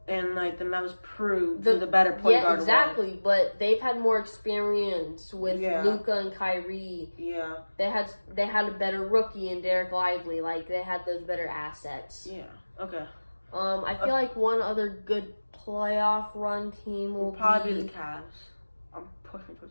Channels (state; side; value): inverted; both; correlation -1.00